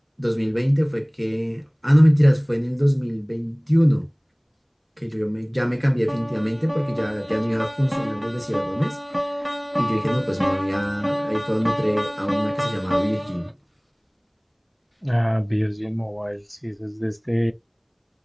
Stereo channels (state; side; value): identical; both; correlation 1.00